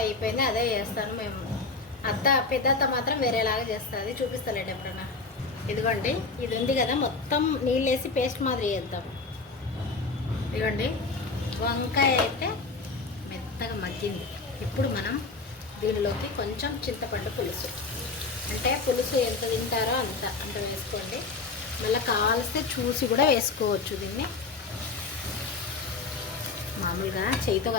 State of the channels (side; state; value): right; quieter; 4.0 dB